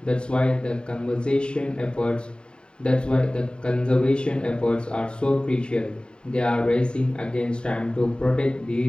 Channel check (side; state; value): right; late; 0.050 ms